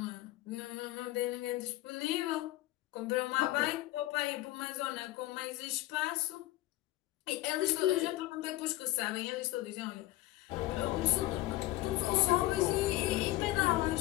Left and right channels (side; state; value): right; quieter; 17.6 dB